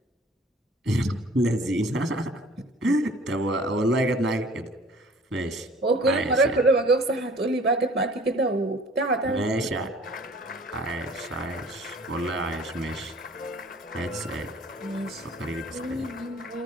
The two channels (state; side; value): normal; both; correlation 0.51